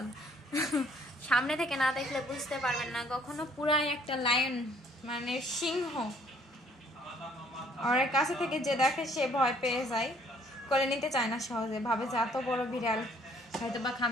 সামনে থেকে না দেখলে বুঝতে পারবেন না, কখনো পুরাই একটা লায়ন মানে সিংহ। আর কাছে থেকে যে দেখে সে ভয় পেয়ে যায়, করে নিতে চায় না সহজে, ভাবে যে এত বড় বিড়াল হয়তো বা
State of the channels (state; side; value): normal; both; correlation 0.62